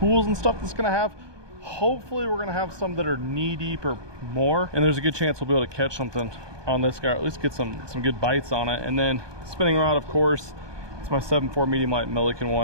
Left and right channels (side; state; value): left; late; 1.2 ms